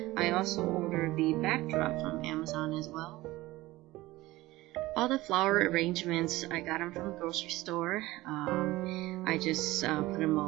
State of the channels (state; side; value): quieter; left; 18.6 dB